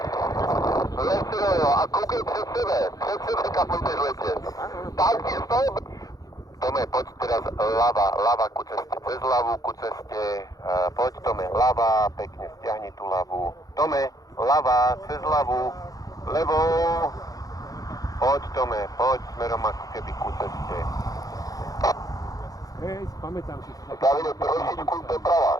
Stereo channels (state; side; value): late; right; 0.17 ms